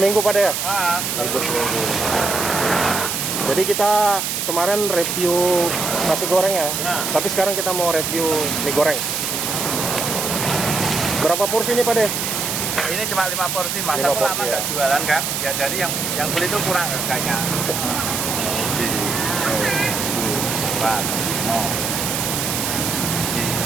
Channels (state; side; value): noise; right; hiss, 1 dB below the sound